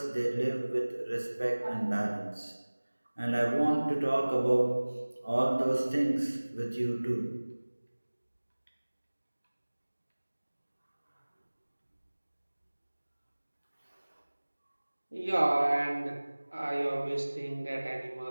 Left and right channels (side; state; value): both; inverted; correlation -1.00